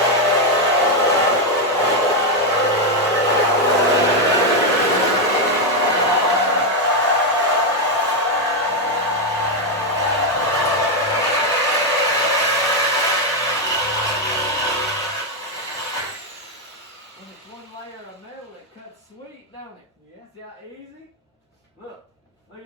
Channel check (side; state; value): both; normal; correlation 0.04